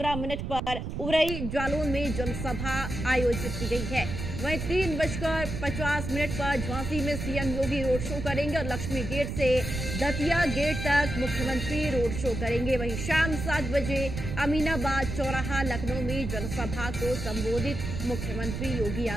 पर उरई जालौन में जनसभा आयोजित की गई है। वहीं 3:50 पर झांसी में सीएम योगी रोड शो करेंगे और लक्ष्मी गेट से दतिया गेट तक मुख्यमंत्री रोड शो करेंगे। वहीं शाम 7 बजे अमीनाबाद चौराहा लखनऊ में जनसभा को संबोधित मुख्यमंत्री योगी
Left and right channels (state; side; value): noise; right; rumble, 5 dB below the sound